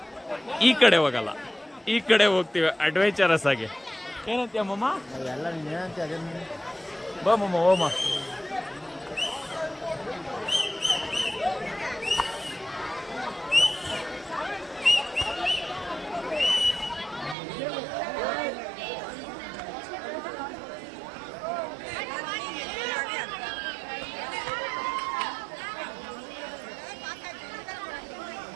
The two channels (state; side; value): drops out; left; at 17.4 s